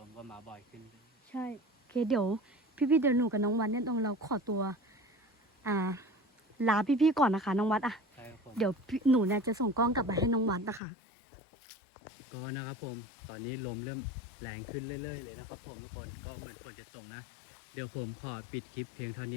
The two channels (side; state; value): right; drops out; at 10.8 s